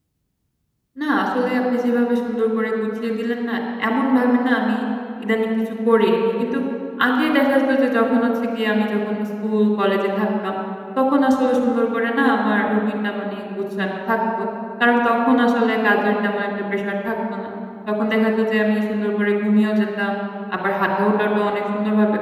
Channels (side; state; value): both; identical; correlation 1.00